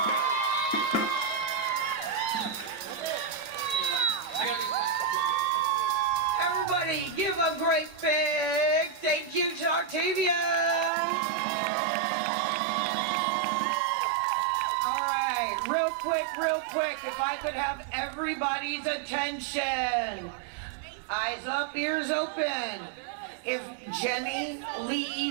Everybody give a great big thank you to Octavian. All right, real quick, if I could have everybody's attention. Eyes up, ears open. If Jenny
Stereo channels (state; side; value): drops out; left; at 10.9 s